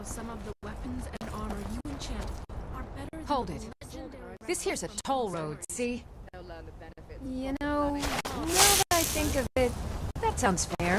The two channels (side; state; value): both; identical; correlation 1.00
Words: some of the weapons and armor you enchant are better than Hold it. This here's a toll road, see? You know, now that I think of it, that sounds fair.